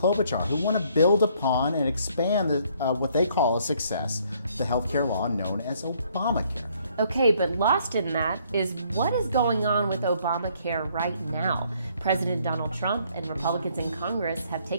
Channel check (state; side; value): inverted; both; correlation -0.65